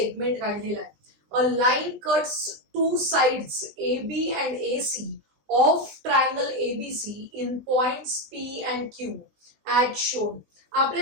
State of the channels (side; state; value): left; late; 20 ms